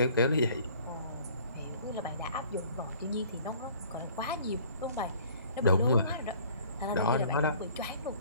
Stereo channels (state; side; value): inverted; both; correlation -0.53